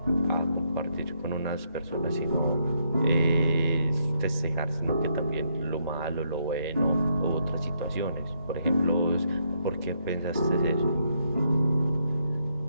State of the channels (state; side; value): inverted; both; correlation -0.76